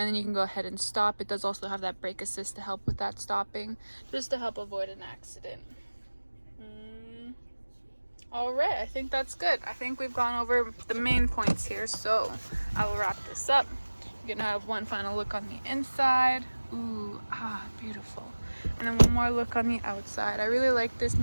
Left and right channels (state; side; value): inverted; both; correlation -1.00